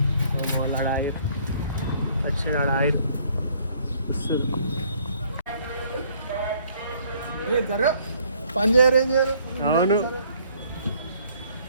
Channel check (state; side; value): inverted; both; correlation -0.62